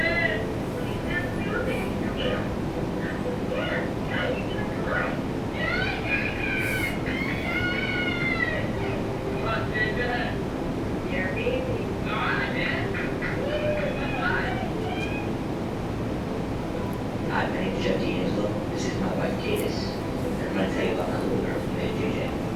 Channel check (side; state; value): both; identical; correlation 1.00